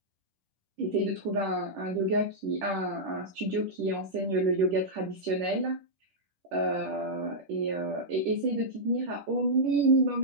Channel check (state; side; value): late; left; 10 ms